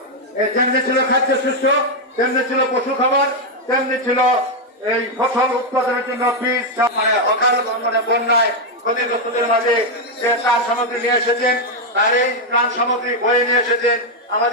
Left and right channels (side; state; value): both; normal; correlation 0.02